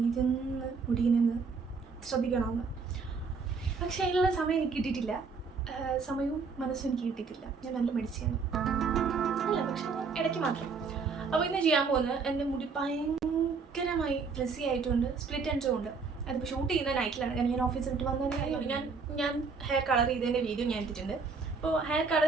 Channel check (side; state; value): left; quieter; 4.9 dB